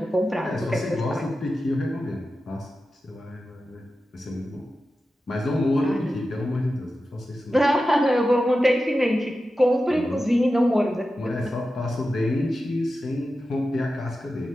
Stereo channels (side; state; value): both; normal; correlation 0.92